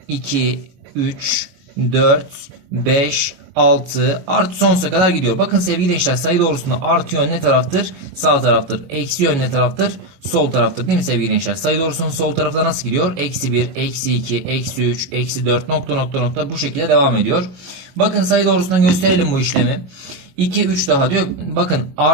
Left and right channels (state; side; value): late; left; 22 ms